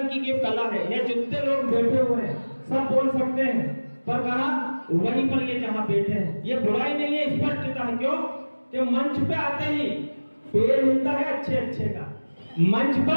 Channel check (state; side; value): inverted; both; correlation -1.00